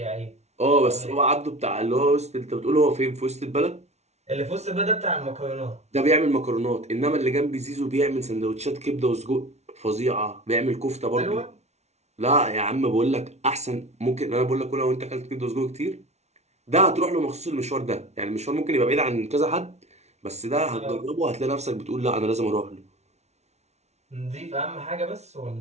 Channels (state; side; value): late; left; 0.32 ms